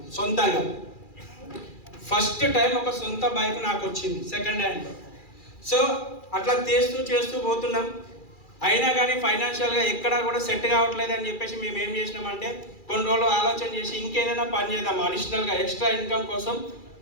సొంతంగా. ఫస్ట్ టైం ఒక సొంత బైక్ నాకు వచ్చింది సెకండ్ హ్యాండ్. సో అట్లా చేస్తూ పోతున్నాం. అయినా కానీ ఫైనాన్షియల్గా ఎక్కడా కూడా సెట్ కావట్లేదు అని చెప్పేసి మేము ఏం చేసినామంటే కొన్ని రోజులు ఆలోచన చేసి ఇంకేదైనా పని చేద్దాం, అడిషనల్గా ఎక్స్ట్రా ఇన్కమ్ కోసం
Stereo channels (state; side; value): late; right; 2.4 ms